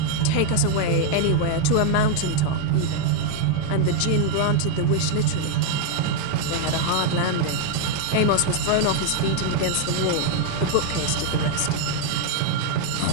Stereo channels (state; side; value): different; both; correlation 0.00